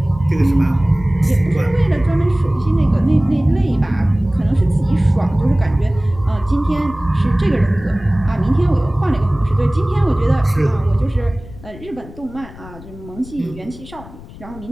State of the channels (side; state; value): left; noise; rumble, 17 dB below the sound